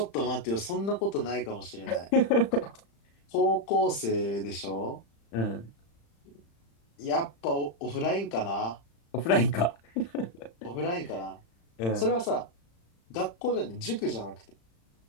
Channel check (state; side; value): late; right; 35 ms